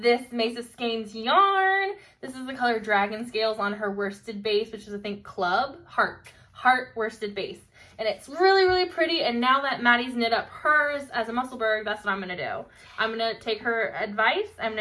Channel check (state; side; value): identical; both; correlation 1.00